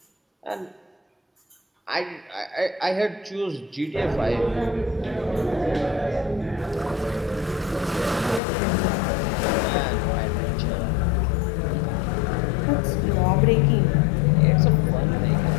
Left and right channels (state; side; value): drops out; right; at 8.4 s